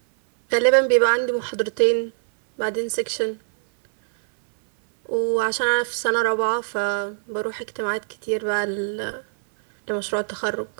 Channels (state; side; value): silent; left; 59 dB below the other